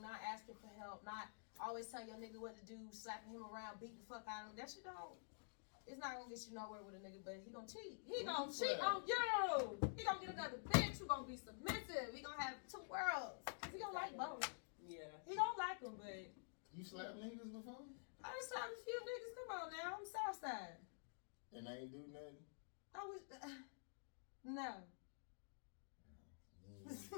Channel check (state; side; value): silent; right; digital silence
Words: not asking for help, not always telling your nigga what to do, slapping him around, beating the fuck out of him. That shit it's not gonna get you nowhere with a nigga, but he gonna cheat. He gonna cheat on you. He gonna get another bitch who gonna be submissive. He gonna have two worlds. He gonna like both. Yeah. He don't like them, but... You slapped niggas before? I done slapped a few niggas. Come on now. I'm Southside. And they ain't do nothing? I was... no. You No,